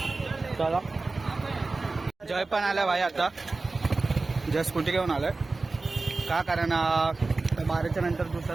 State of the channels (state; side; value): quieter; left; 3.6 dB